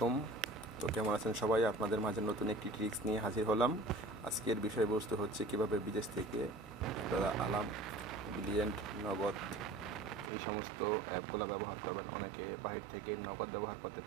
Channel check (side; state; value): left; drops out; at 10.3 s